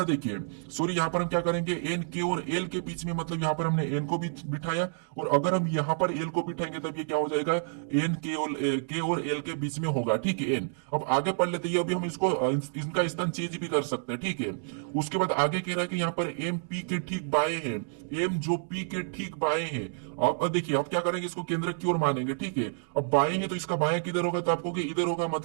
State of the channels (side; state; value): left; silent; digital silence